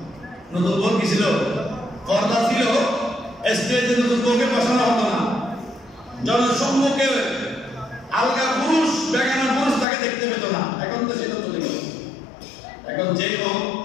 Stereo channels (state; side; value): drops out; right; at 9.9 s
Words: নতুন বউ কি ছিল? পর্দা ছিল। স্টেজে নতুন বউকে বসানো হতো না, জনসম্মুখে আলগা পুরুষ, বেগানা পুরুষ তাকে দেখতে পেত না। এখন তো সেটা চলে গেল। এখন যে বউ